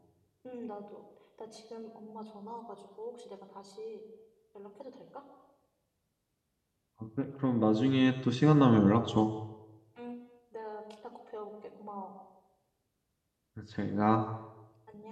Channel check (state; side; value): identical; both; correlation 1.00